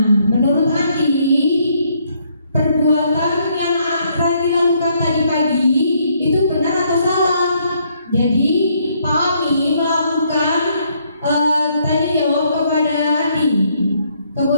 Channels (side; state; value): both; inverted; correlation -0.70